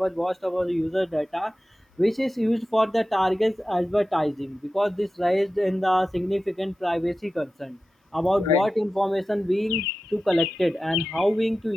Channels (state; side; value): normal; both; correlation 0.94